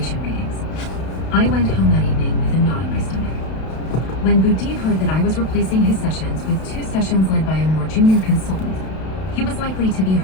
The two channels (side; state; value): right; late; 32 ms